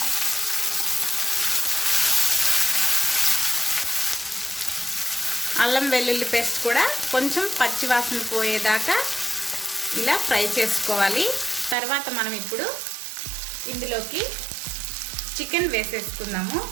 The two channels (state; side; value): drops out; left; at 11.8 s